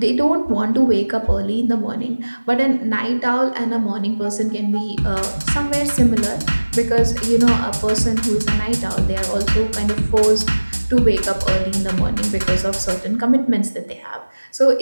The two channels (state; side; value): inverted; both; correlation -1.00